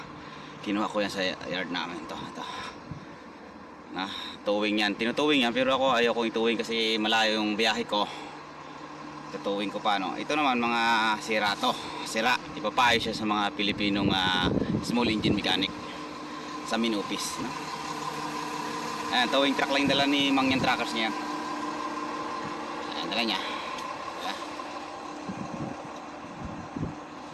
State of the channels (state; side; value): identical; both; correlation 1.00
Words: Kinuha ko yan sa yard namin. Ito. Na, towing yan. Tinutowing yan, pero ako ayaw kong itowing kasi malayo yung biyahe ko. Tutowing ko pa, no? Ito naman mga sira to. Sira. Ipapayo siya sa mga Pilipinong small engine mechanic sa main office, no? Ayan, towing truck lang yung dala ni Mangyan Trackers niya. Ayan, dala niya. Ayan.